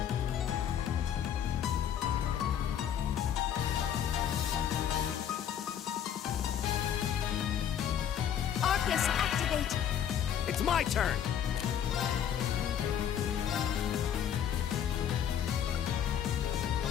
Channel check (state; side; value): quieter; right; 9.3 dB